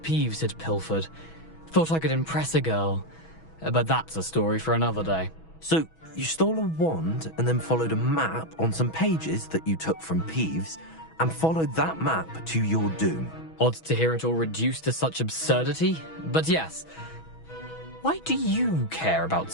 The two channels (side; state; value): right; late; 6.2 ms